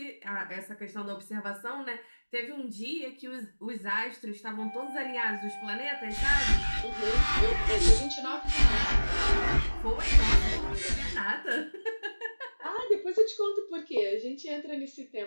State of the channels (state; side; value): inverted; both; correlation -1.00